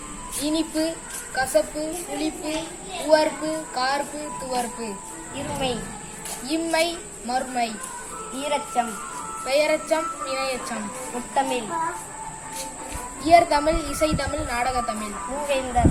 இனிப்பு, கசப்பு, புளிப்பு, உவர்ப்பு, கார்ப்பு, துவர்ப்பு. இருமை, இம்மை, மறுமை. ஈரச்சம், பெயரச்சம், இணையச்சம். முத்தமிழ், இயற்தமிழ், இசைத்தமிழ், நாடகத்தமிழ்.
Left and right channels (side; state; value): both; identical; correlation 1.00